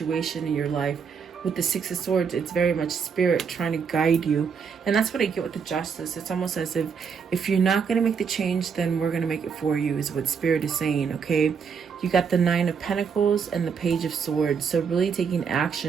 in your life. With the Six of Swords, it's very much spirit trying to guide you. And that's what I get with the Justice. It's almost as if you're not going to make the change, then we're going to make it for you, is what spirit is saying, okay? You got the Nine of Pentacles and the Page of Swords. So really taking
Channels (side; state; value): left; quieter; 6.3 dB